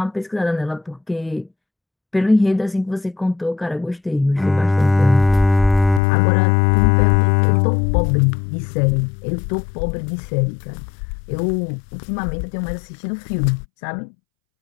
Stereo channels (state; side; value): drops out; right; at 6.0 s